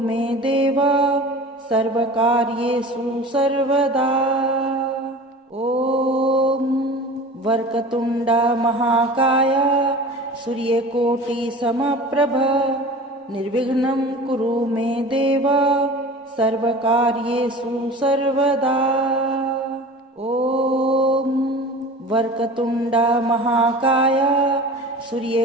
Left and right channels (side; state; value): both; normal; correlation 0.38